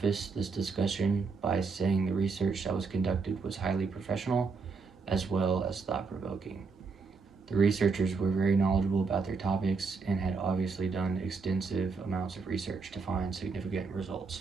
this discussion by saying the research that was conducted was highly professional as well as thought-provoking. The researchers were very knowledgeable about their topics and had obviously done extensive amounts of research to find significant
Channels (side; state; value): left; quieter; 4.5 dB